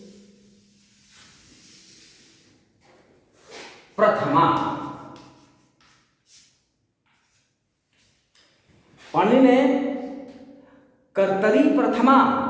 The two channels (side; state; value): both; identical; correlation 1.00